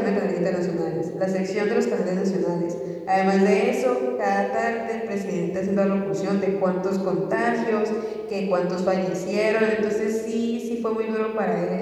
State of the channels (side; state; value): both; identical; correlation 1.00